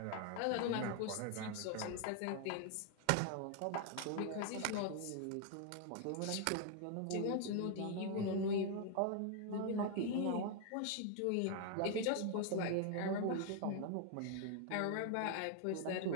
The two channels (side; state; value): both; different; correlation 0.00